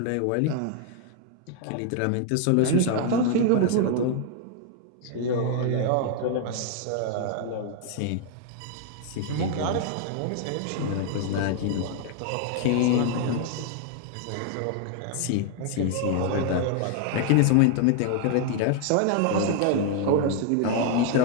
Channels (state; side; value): different; both; correlation 0.00